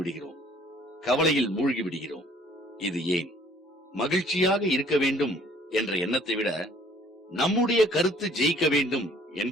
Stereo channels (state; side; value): normal; both; correlation 0.58